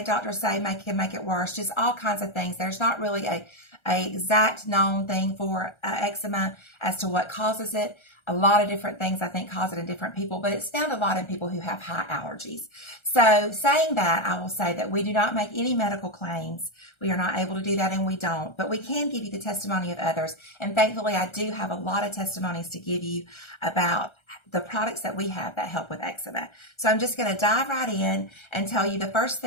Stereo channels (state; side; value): late; right; 1.3 ms